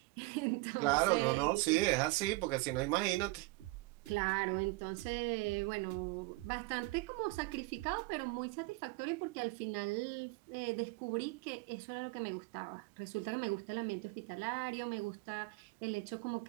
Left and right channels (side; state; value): left; quieter; 23.0 dB